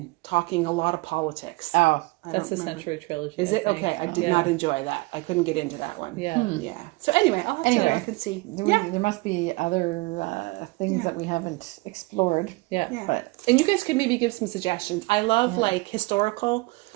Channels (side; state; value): left; quieter; 24.3 dB